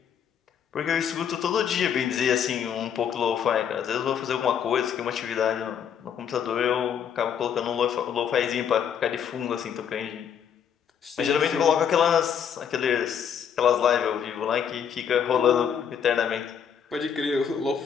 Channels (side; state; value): right; quieter; 8.1 dB